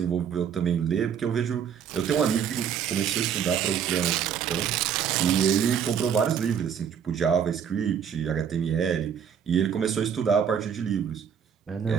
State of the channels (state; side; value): quieter; left; 8.0 dB